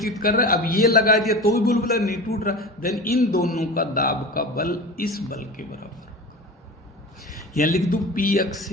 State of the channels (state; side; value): normal; both; correlation 0.31